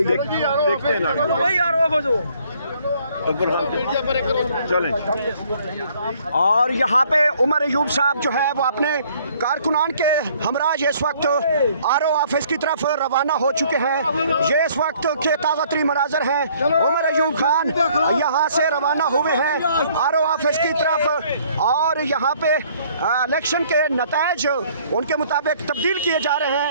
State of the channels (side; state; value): both; inverted; correlation -0.60